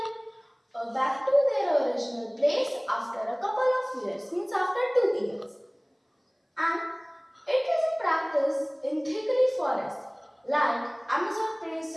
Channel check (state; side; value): identical; both; correlation 1.00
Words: original place after a couple of years, means after 2 years. And it is a practice in thickly forests like Amazon